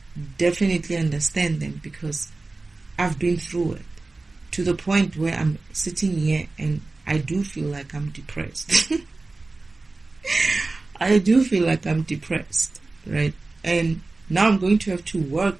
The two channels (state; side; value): quieter; left; 3.4 dB